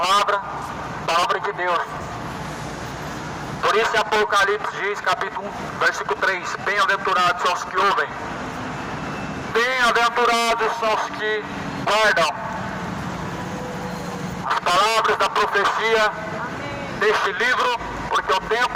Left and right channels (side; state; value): both; identical; correlation 1.00